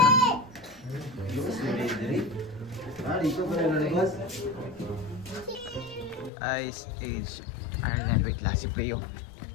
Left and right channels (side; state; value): right; drops out; at 6.3 s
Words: Ice Age Ireland. Wait, last si Pleo.